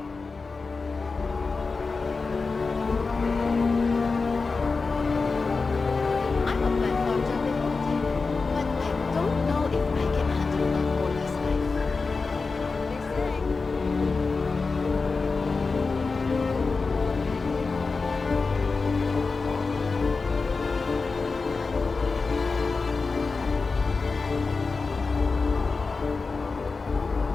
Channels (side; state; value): right; quieter; 4.3 dB